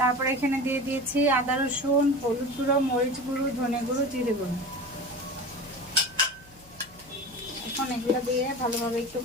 এখানে দিয়ে দিয়েছি আদা রসুন, হলুদ গুঁড়ো, মরিচ গুঁড়ো, ধনে গুঁড়ো, জিরে গুঁড়ো। এখন এগুলো দিয়ে ভালোভাবে একটু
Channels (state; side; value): noise; left; hum, 25 dB below the sound